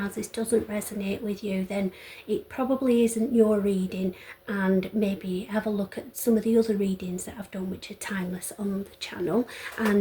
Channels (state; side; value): identical; both; correlation 1.00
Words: this doesn't resonate with you, then it probably isn't your reading, and maybe have a look at some of the other readings that I've done which are timeless on the channel,